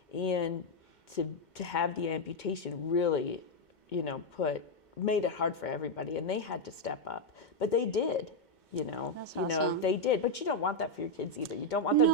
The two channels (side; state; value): right; late; 2.2 ms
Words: And to have the amputation really, you know, made it hard for everybody. And they had to step up. But they did. You know, That's you know, awesome. they did, but you don't want that for your kids either. You don't want them